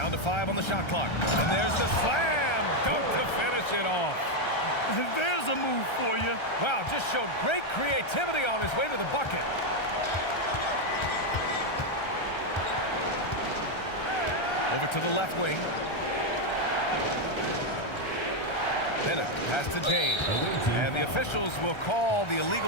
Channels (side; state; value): right; late; 1.3 ms